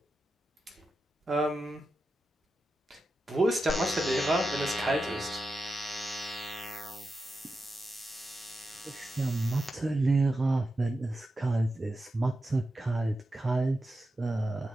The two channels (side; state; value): both; normal; correlation 0.90